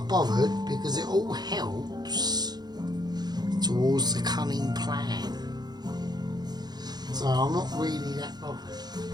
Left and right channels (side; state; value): left; late; 0.20 ms